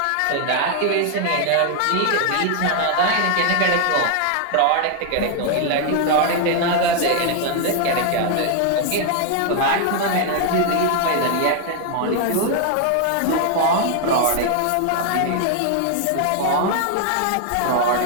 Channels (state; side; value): different; both; correlation 0.00